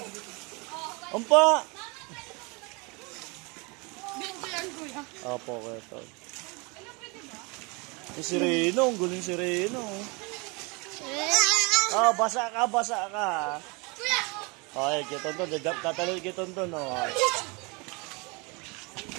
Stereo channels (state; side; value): quieter; left; 29.0 dB